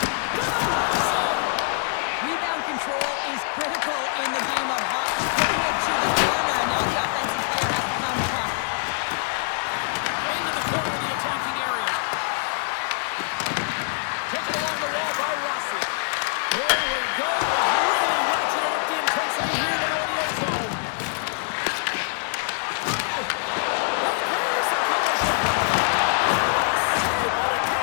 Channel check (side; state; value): right; silent; 62 dB below the other